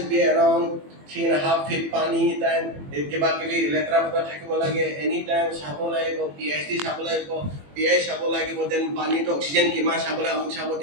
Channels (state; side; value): late; left; 21 ms